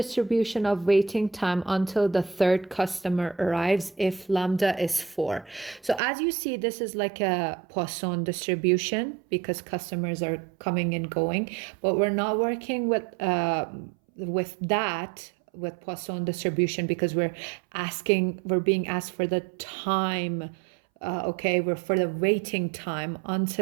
of waiting time until the third customer arrives if lambda is 4. So as you see, this is like a Poisson distribution because customers are coming and going, but we're not working with Poisson distribution because we're being asked for the time. Okay, we're for the waiting time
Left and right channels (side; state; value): left; drops out; at 6.0 s